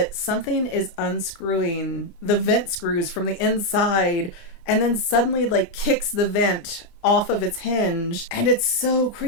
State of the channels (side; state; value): right; late; 30 ms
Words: something is unscrewing the vent screws from the inside and then suddenly, like, kicks the vent off of its hinge. And it's so